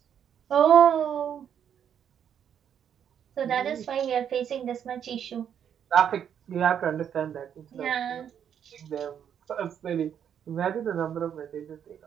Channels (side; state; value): left; quieter; 8.7 dB